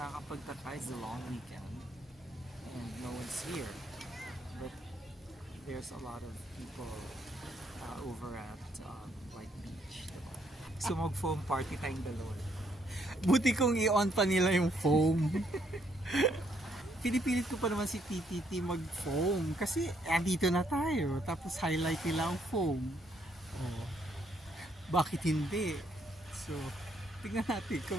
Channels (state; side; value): normal; both; correlation 0.72